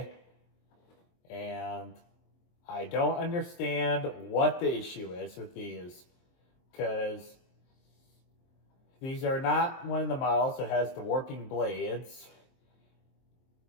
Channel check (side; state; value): right; late; 23 ms